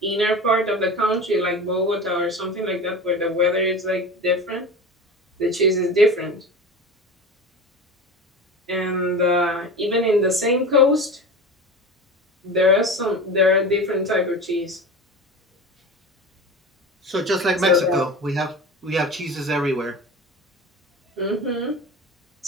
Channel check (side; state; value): both; normal; correlation 0.31